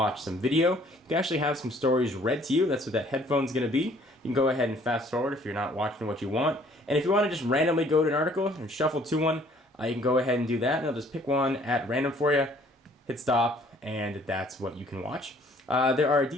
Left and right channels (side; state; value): both; normal; correlation 0.59